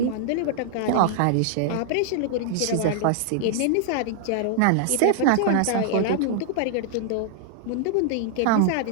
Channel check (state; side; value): different; both; correlation -0.01